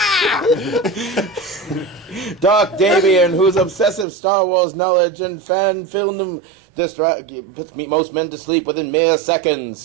Dark Davian, whose obsessive Star Wars knowledge and fan film puts most men to sleep within mere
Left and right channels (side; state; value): left; drops out; at 4.0 s